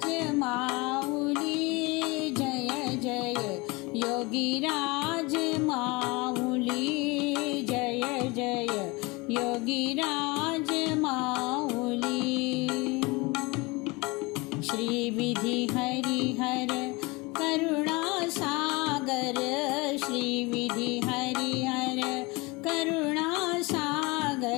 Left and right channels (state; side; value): quieter; right; 25.1 dB